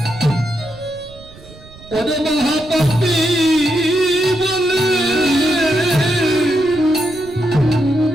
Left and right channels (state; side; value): noise; right; rumble, 20 dB below the sound